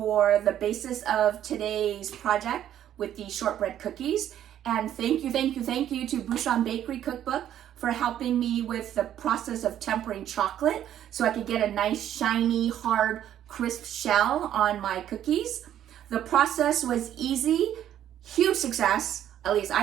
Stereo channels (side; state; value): left; quieter; 11.0 dB